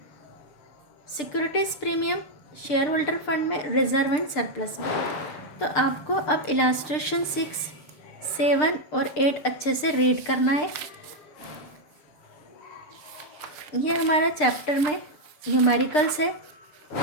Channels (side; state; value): right; late; 6.7 ms